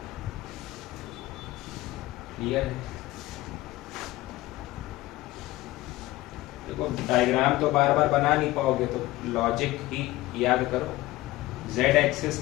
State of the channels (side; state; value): right; quieter; 17.7 dB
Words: क्लियर है? देखो डायग्राम तो बार बार बना नहीं पाओगे, तो लॉजिक ही याद करो। जेड